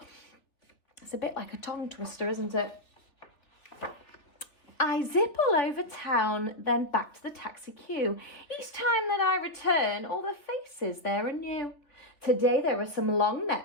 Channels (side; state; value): right; late; 3.3 ms